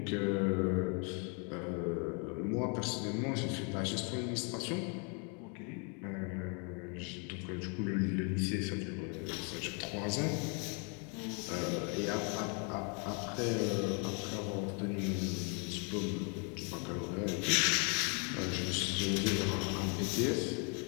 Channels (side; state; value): right; quieter; 36.9 dB